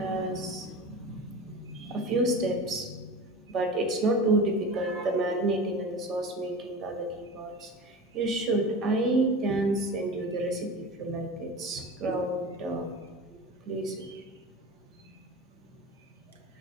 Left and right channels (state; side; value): normal; both; correlation 0.32